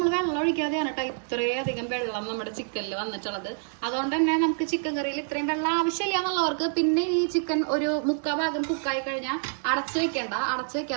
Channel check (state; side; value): silent; left; digital silence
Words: വെള്ളം ഒഴിക്കാതെയാണ് കേട്ടോ ഇത്രയധികം വെള്ളം നമ്മുടെ ചിക്കനിൽ വന്നിട്ടുള്ളത്. അതുകൊണ്ട് തന്നെ നമുക്ക് ചിക്കൻ കറിയിൽ ഇത്രയും വെള്ളം ആവശ്യമില്ല എന്നുള്ളവർക്ക് പിന്നെ ഈ ചിക്കൻ ഒരു 3/4 ഭാഗം കുക്കായി കഴിഞ്ഞാൽ അടച്ചു